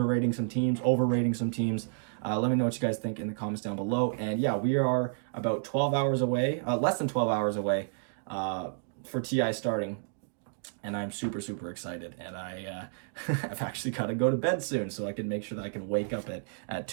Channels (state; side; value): silent; left; digital silence